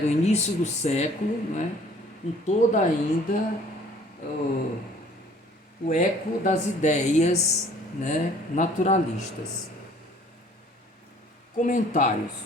do início do século, né? Com toda ainda o eco das ideias, né, naturalistas. Comentários.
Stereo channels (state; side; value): normal; both; correlation 0.54